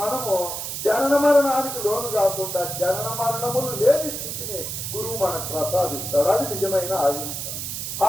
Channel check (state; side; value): noise; right; hiss, 5 dB below the sound